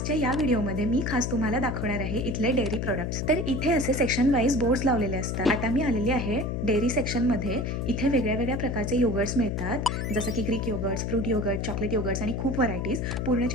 या व्हिडिओमध्ये मी खास तुम्हाला दाखवणार आहे इथले डेअरी प्रोडक्ट्स. तर इथे असे सेक्शन वाईज बोर्ड्स लावलेले असतात. आता मी आलेली आहे डेअरी सेक्शन मध्ये. इथे वेगळ्या वेगळ्या प्रकारचे योगर्ट्स मिळतात, जसं की Greek yogurts, fruit yogurt, chocolate yogurts आणि खूप व्हरायटीज.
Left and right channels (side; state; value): left; noise; hum, 2 dB below the sound